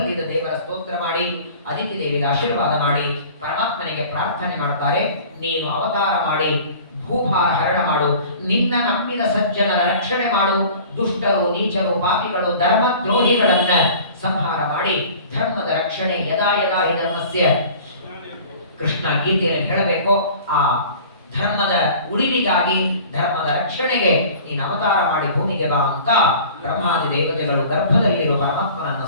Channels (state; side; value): inverted; both; correlation -0.44